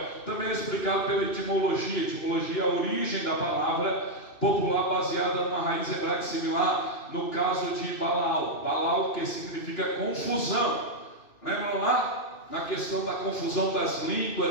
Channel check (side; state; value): right; late; 2.6 ms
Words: Também é explicado pela etimologia. Etimologia é a origem da palavra popular baseada numa raiz hebraica similar, no caso de Balal. Balal, que significa confusão. Lembram lá? Na questão da confusão das